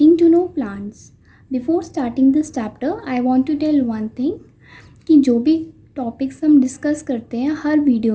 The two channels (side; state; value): both; identical; correlation 1.00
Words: to know plants. Before starting this chapter, I want to tell one thing कि जो भी टॉपिक्स हम डिस्कस करते हैं हर